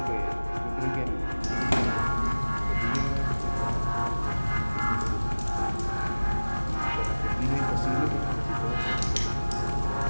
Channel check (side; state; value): both; inverted; correlation -1.00